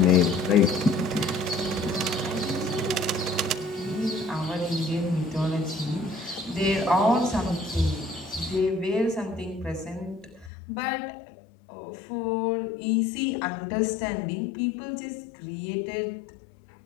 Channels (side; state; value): right; drops out; at 10.5 s